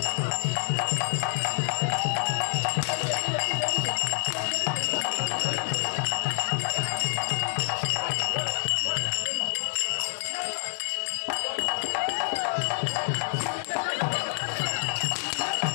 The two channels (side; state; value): right; silent; digital silence